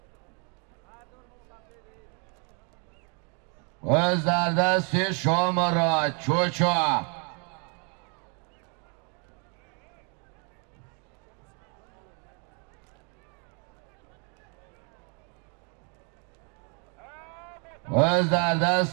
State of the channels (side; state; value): left; quieter; 37.1 dB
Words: وز در دست شامرات چوچا. وز در